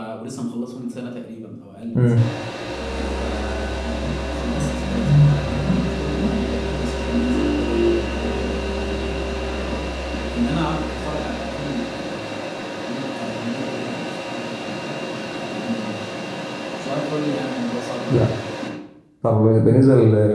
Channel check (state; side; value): identical; both; correlation 1.00